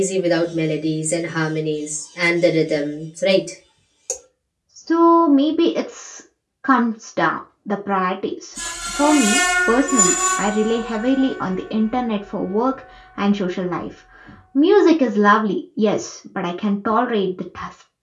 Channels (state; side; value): identical; both; correlation 1.00